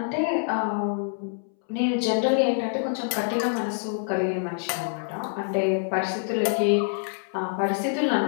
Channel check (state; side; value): silent; right; 61 dB below the other